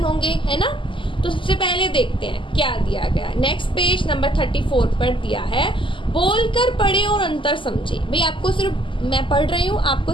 होंगे, है ना। तो सबसे पहले देखते हैं क्या दिया गया। नेक्स्ट पेज नंबर 34 पर दिया है, बोलकर पढ़े और अंतर समझे। भाई आपको सिर्फ मैं पढ़ रही हूँ, आपको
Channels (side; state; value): right; late; 0.25 ms